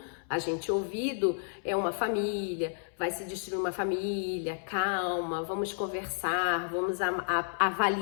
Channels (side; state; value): right; silent; 57 dB below the other